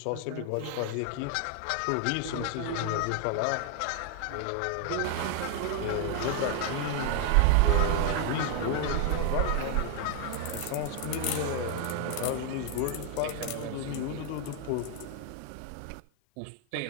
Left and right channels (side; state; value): both; different; correlation 0.00